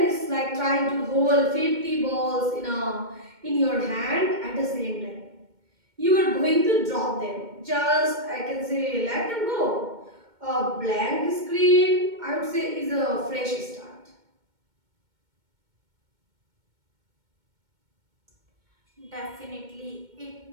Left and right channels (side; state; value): left; late; 2.2 ms